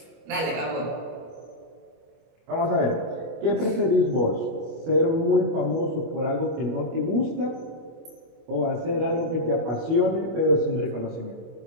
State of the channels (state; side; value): late; left; 25 ms